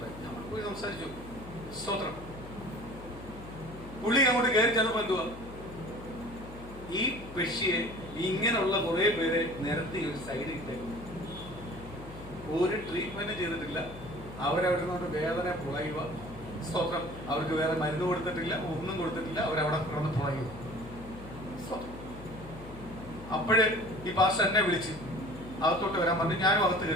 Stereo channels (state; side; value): noise; left; hum, 15 dB below the sound